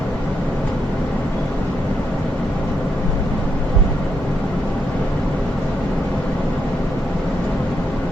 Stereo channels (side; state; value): both; normal; correlation 0.80